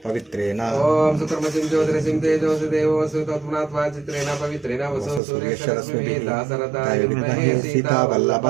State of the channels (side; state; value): left; drops out; at 5.2 s